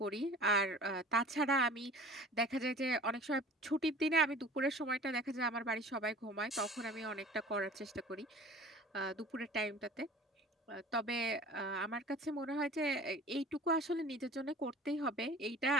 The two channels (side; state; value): both; normal; correlation 0.43